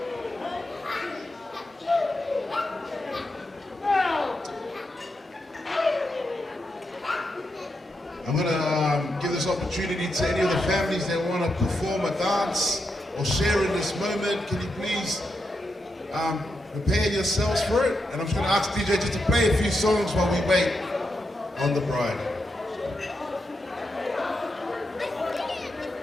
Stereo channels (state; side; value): normal; both; correlation 0.85